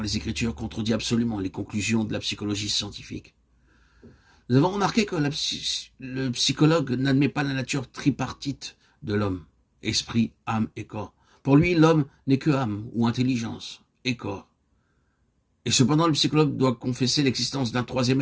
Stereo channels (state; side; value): identical; both; correlation 1.00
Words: les Écritures contredit absolument les conclusions de la psychologie scientifique. Nous avons remarqué que le psychologue n'admet pas la nature tripartite de l'homme, esprit, âme et corps. Pour lui, l'homme n'est que âme ou intelligence et corps. Et cependant, le psychologue doit confesser l'existence d'un troisième